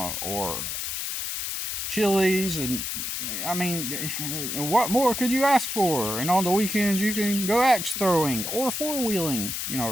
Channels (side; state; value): left; noise; hiss, 3 dB below the sound